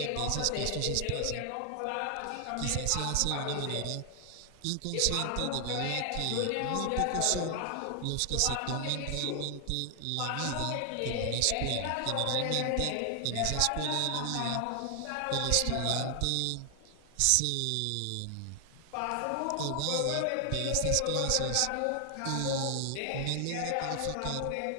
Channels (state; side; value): different; both; correlation 0.00